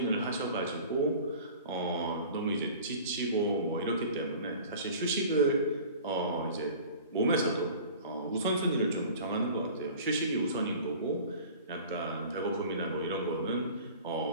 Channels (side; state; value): both; inverted; correlation -0.43